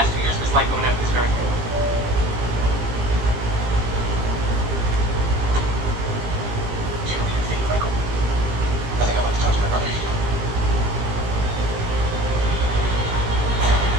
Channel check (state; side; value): late; left; 17 ms